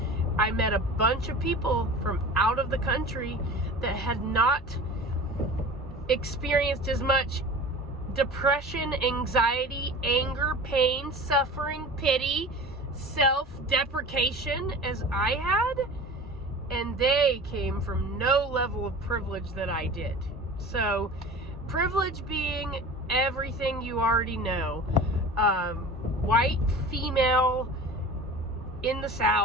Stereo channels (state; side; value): normal; both; correlation 0.38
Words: I met a bunch of people from out of the country that had not experienced as much depression, anxiety, anger, pain, suffering, pity, self-deprecation as I had, and they came from no level of privilege that I did. So, privilege being everything you already know. White, female, in the